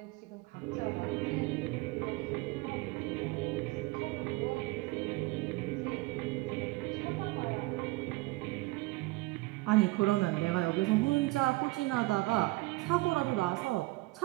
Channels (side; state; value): left; quieter; 21.4 dB